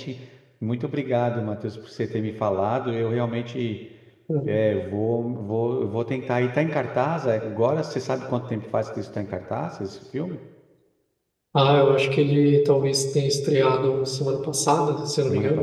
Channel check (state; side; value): identical; both; correlation 1.00